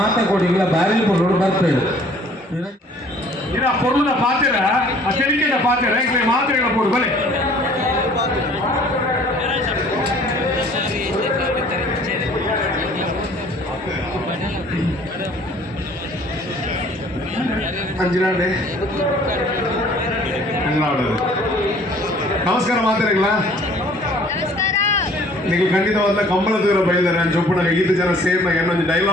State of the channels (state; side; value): normal; both; correlation 0.55